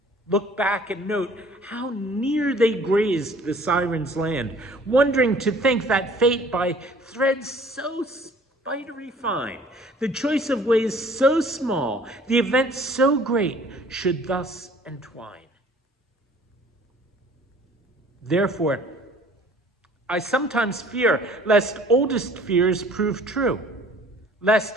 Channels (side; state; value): both; normal; correlation 0.53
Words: look back and note how near they grazed the siren's land, wondering to think that fate by threads so spidery fine, the choice of ways so small, the event so great, should thus entwine. Therefore, I sometimes fear lest oldest fears prove true, lest